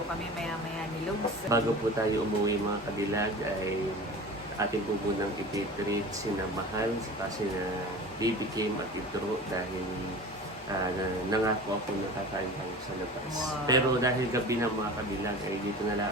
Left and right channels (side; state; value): both; normal; correlation 0.36